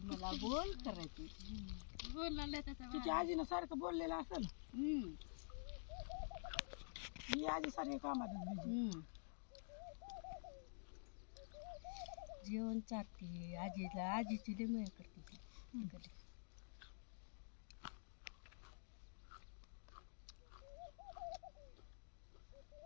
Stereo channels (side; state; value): right; silent; digital silence